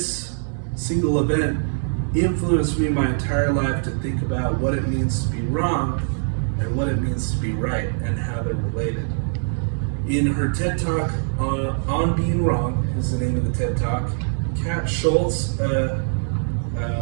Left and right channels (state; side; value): silent; left; digital silence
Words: single event influenced me my entire life to think about what it means to be wrong and what it means to be right and how they're related. In her TED Talk on Being Wrong is the name of the TED Talk, Kat Schultz, a